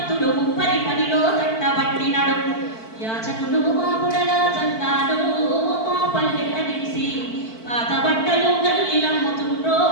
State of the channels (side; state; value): right; late; 4.5 ms